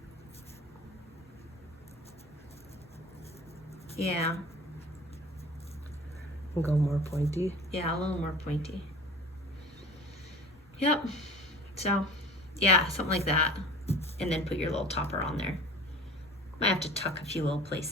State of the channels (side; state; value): both; normal; correlation 0.42